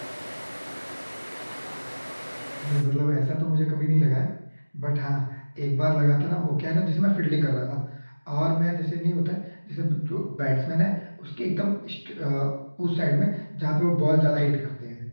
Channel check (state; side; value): inverted; both; correlation -1.00